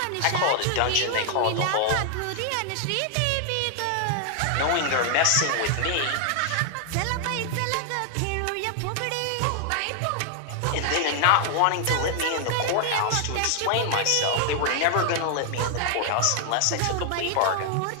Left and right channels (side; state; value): both; different; correlation 0.00